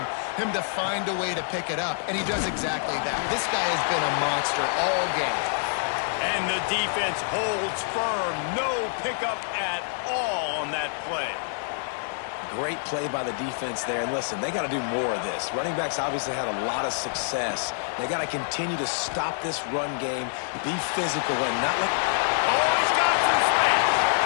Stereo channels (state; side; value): silent; right; digital silence